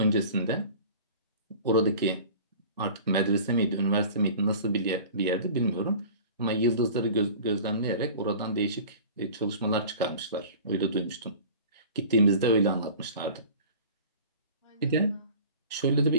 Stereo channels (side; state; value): both; inverted; correlation -0.42